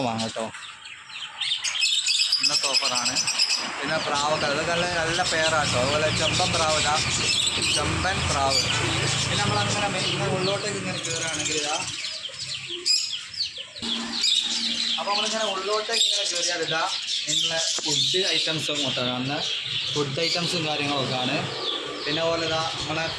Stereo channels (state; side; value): identical; both; correlation 1.00